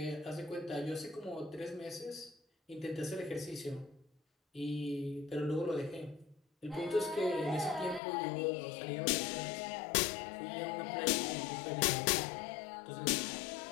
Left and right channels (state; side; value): drops out; right; at 8.0 s